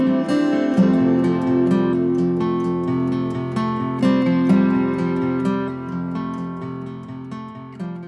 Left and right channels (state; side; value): identical; both; correlation 1.00